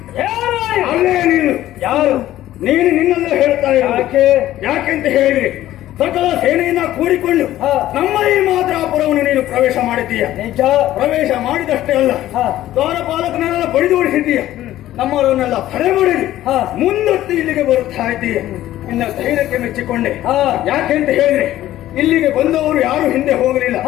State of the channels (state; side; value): quieter; right; 14.0 dB